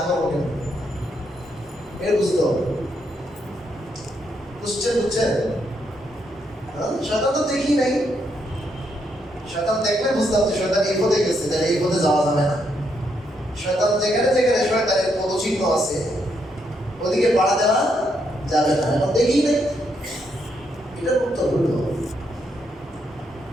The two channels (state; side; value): normal; both; correlation 0.77